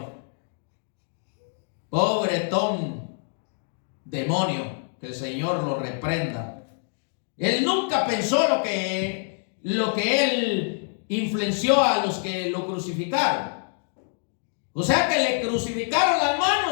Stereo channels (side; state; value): right; silent; 61 dB below the other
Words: pobretón demonio, que el Señor lo reprenda. Él nunca pensó lo que él influenció a los que lo crucificaron. O sea que le crucificaron las